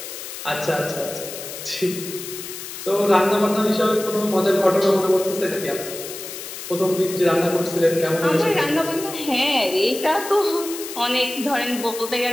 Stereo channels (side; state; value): left; noise; hiss, 10 dB below the sound